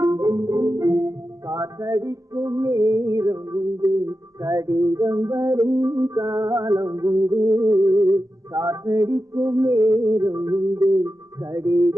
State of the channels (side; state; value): left; late; 0.16 ms